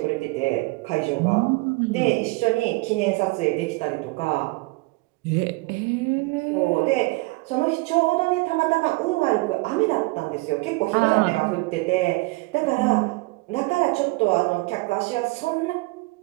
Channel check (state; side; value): quieter; left; 24.1 dB